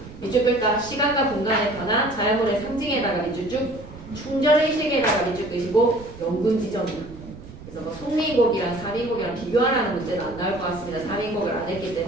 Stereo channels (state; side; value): noise; right; rumble, 16 dB below the sound